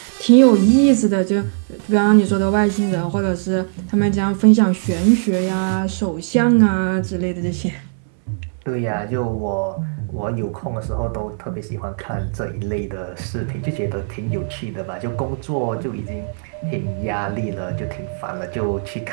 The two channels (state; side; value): silent; left; 66 dB below the other